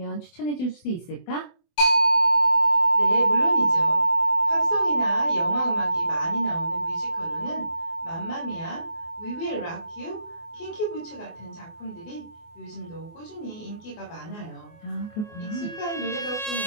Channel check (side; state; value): right; late; 24 ms